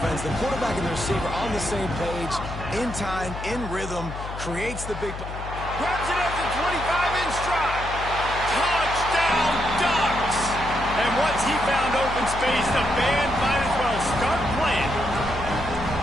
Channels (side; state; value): left; noise; hum, 9 dB below the sound